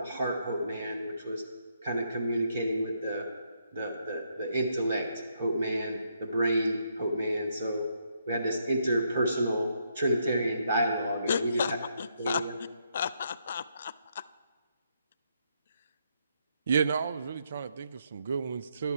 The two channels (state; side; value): inverted; both; correlation -0.76